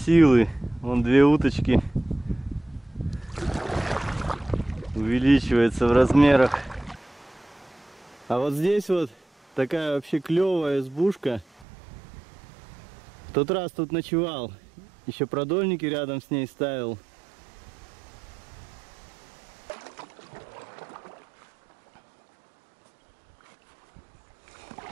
Вон 2 уточки. Увеличивается в размерах. А вот здесь вот такая вообще клевая избушка. В тот раз тут ночевал. Еще продольники рядом с ней ставил.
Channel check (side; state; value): left; drops out; at 11.7 s